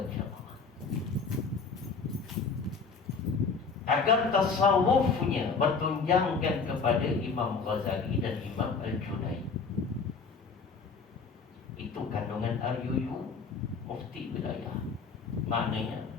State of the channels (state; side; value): quieter; right; 5.0 dB